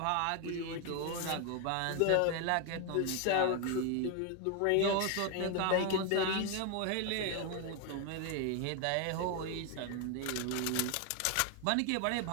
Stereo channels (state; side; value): different; both; correlation 0.01